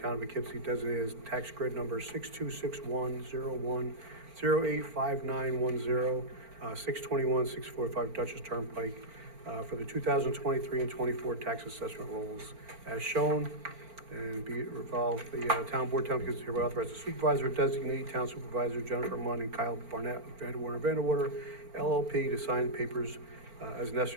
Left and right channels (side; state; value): left; late; 4.4 ms